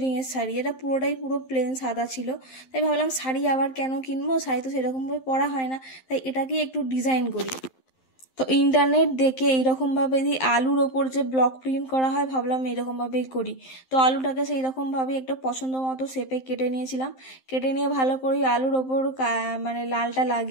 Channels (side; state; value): right; late; 11 ms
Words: শাড়ি, এটা পুরো প্লেন সাদা ছিল। তাই ভাবলাম শাড়ি আবার কেন কিনবো, শাড়ি তো সেরকমভাবে পরা হয় না, তাই এটাকে একটু ডিজাইন করি। তো ইন্টারনেট দেখে এইরকমভাবে এই আলুর ওপর যে ব্লক প্রিন্ট করা হয়, ভাবলাম এইরকমভাবেই করি। তো আলুটাকে সেই রকমভাবেই একটা পছন্দ মতো শেপে কেটে নিয়েছিলাম। কেটে নিয়ে ভালো করে আলুর ওপর মানে লালটা